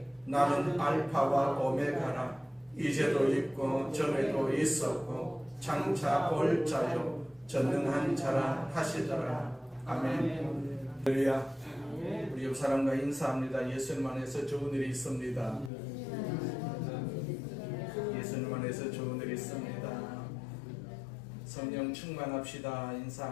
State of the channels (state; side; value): drops out; right; at 15.7 s